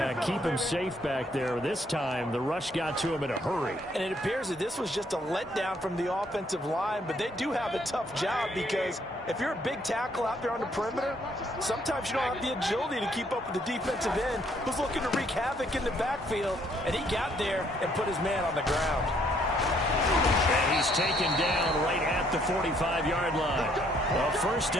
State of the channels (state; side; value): normal; both; correlation 0.67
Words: keep him safe back there. This time, the rush got to him in a hurry. And it appears that this was just a letdown from the offensive line, but they do have a tough job because if you're a big tackle out there on the perimeter, sometimes you don't have the agility to keep up with the defensive end who's looking to wreak havoc in the backfield, and he got there and put his man on the ground. And he's taken down right at the 45-yard line. A 1st